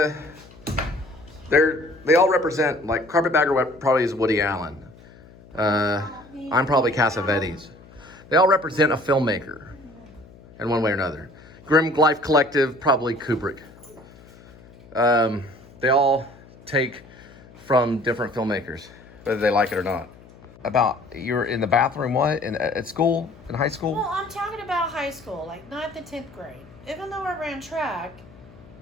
all represent, like Carpetbagger probably is Woody Allen. I'm probably Cassavetes. They all represent a filmmaker in one way or another. Grim Life Collective, probably Kubrick. They all take from different filmmakers, whether they like it or not. About, you were in the bathroom, what? At school? In high school? Well, I'm talking about high school, like 9th and 10th grade. Even though I ran track,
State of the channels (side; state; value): left; noise; hum, 22 dB below the sound